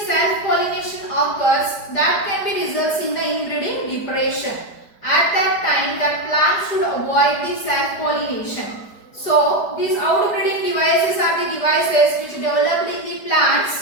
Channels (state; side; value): late; right; 4.8 ms